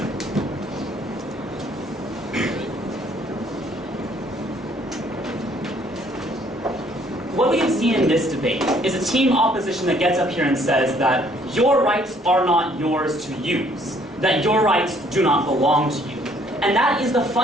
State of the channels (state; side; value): normal; both; correlation 0.62